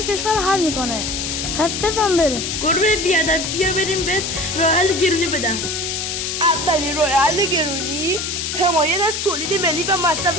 کشور حل میکنه. پس بزن بریم. گربه بیادب بیا بریم بهت راه حل گرونی بدم. اولین راه حل گرونی حمایت از تولید ملی و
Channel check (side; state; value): left; noise; hiss, 3 dB below the sound